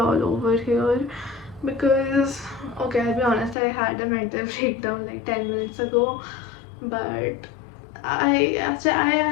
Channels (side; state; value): right; drops out; at 3.6 s